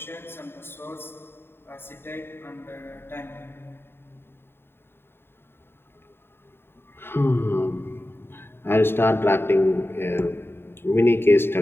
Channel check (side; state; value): right; late; 0.11 ms